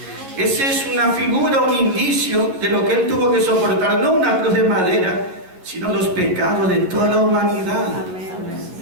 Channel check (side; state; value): left; late; 11 ms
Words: Esa es una figura, un indicio de lo que Él tuvo que soportar, no una cruz de madera, sino los pecados de toda la humanidad.